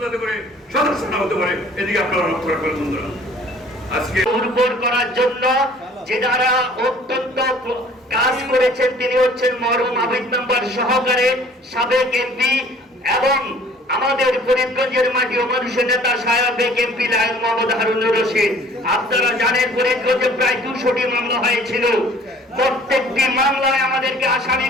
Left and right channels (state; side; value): normal; both; correlation 0.53